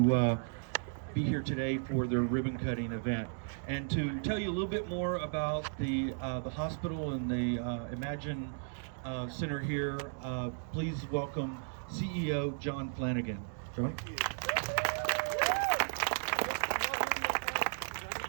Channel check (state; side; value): silent; left; digital silence